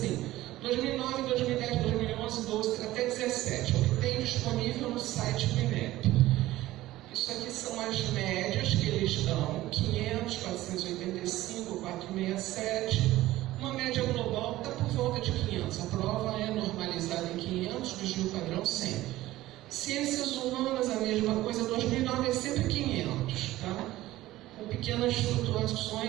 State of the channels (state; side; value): quieter; left; 16.2 dB